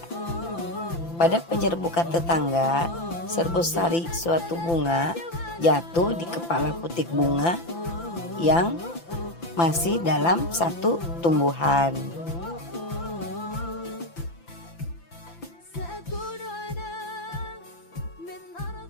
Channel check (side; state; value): right; late; 5.9 ms